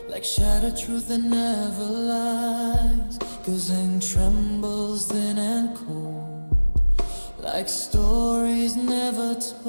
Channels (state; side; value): inverted; both; correlation -1.00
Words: like shattered truth that never lies. Guzheng trembles thin and cold, like stories never